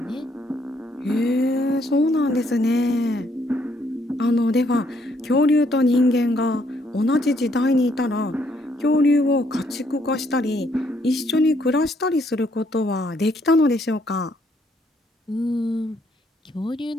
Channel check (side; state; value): both; normal; correlation 0.70